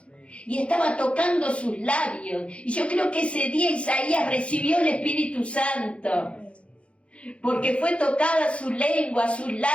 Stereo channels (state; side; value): late; right; 0.061 ms